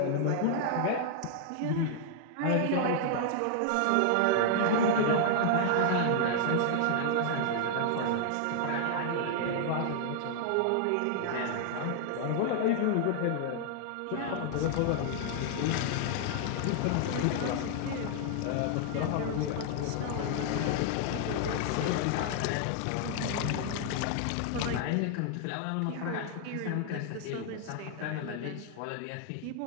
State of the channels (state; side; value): different; both; correlation -0.01